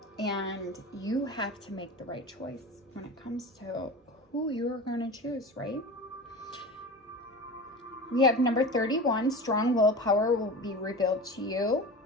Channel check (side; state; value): both; normal; correlation 0.31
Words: and you have to make the right choice when it comes to who you're going to choose, right? We have number 31, strong willpower will be revealed to you